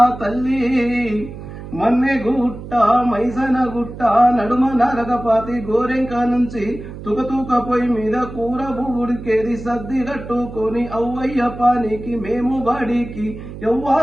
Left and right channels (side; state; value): right; noise; hum, 12 dB below the sound